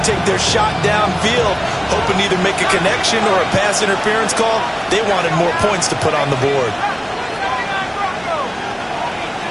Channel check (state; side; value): identical; both; correlation 1.00